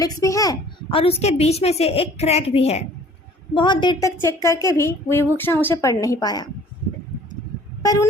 भी है और उसके बीच में से एक क्रैक भी है। बहुत देर तक चेक करके भी विभूषण उसे पढ़ नहीं पाया, पर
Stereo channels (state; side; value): normal; both; correlation 0.52